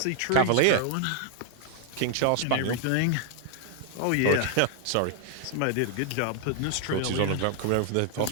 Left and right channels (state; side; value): different; both; correlation 0.00